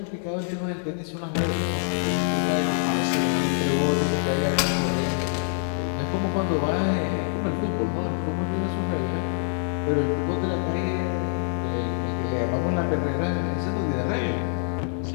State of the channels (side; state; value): right; silent; digital silence